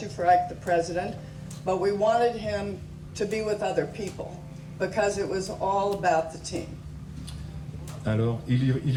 for Ike the President, but we wanted him to be with other people because it was all about the team. Alors,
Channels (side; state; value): both; identical; correlation 1.00